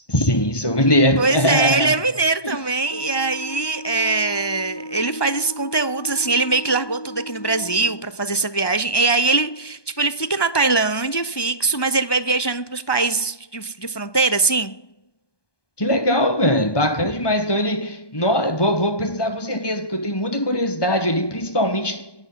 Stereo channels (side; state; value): right; late; 1.2 ms